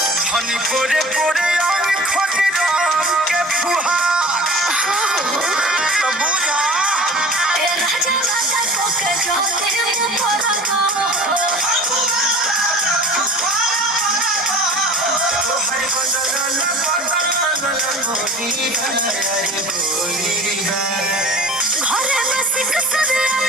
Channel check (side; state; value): both; normal; correlation 0.41